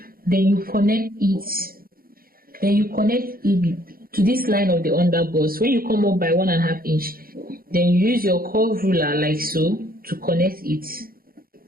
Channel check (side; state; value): left; late; 0.42 ms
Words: Then you connect it. Then you connect it to this line of the under bust. When you come up by 1.5 inch, then you use your curve ruler like so to connect it.